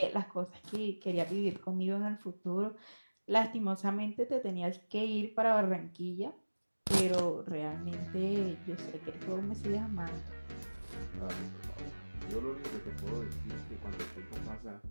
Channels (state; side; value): inverted; both; correlation -1.00